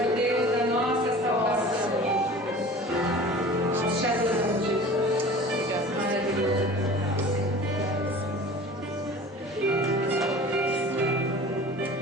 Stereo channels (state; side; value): normal; both; correlation 0.41